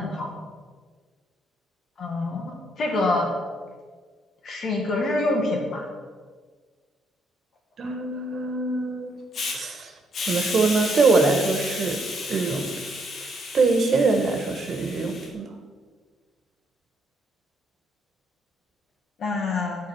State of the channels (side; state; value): both; normal; correlation 0.73